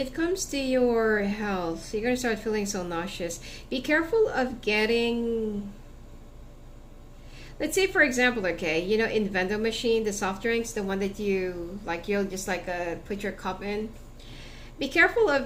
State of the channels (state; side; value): identical; both; correlation 1.00